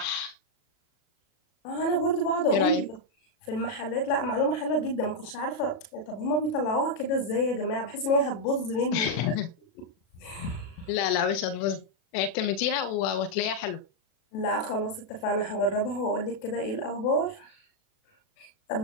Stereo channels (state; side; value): late; right; 37 ms